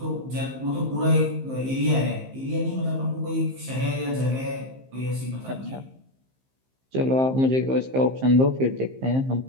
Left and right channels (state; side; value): late; left; 15 ms